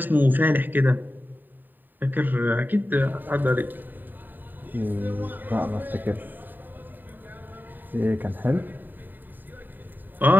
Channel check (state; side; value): late; left; 0.090 ms